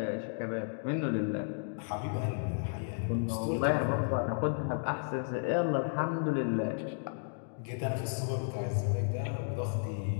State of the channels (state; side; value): silent; right; digital silence